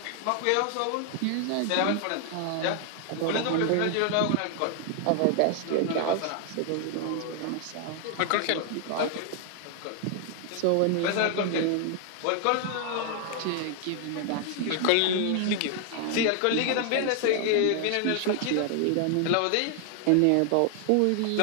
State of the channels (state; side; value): different; both; correlation 0.00